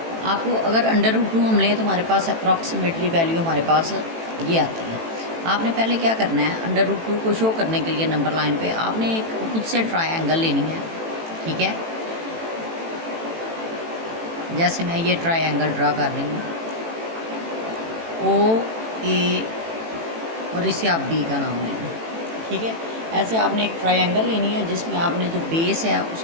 आपको अगर √2 हम लें तो हमारे पास अप्रॉक्सीमेटली वैल्यू हमारे पास ये आती है। आपने पहले क्या करना है, √2 को शो करने के लिए नंबर लाइन पे आपने एक खुद से ट्रायंगल लेनी है। ठीक है, जैसे मैं ये ट्रायंगल ड्रा कर रही हूँ, ओ ए और इसे आप बी का नाम लेना। ठीक है, ऐसे आपने एक ट्रायंगल लेनी है जिसमें आपने जो बेस है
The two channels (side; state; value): left; late; 18 ms